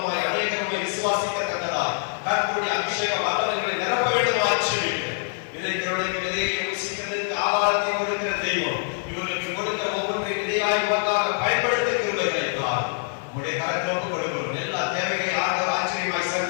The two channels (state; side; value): silent; right; digital silence